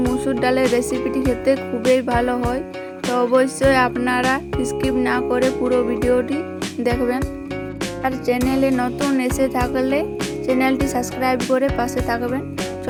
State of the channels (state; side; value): identical; both; correlation 1.00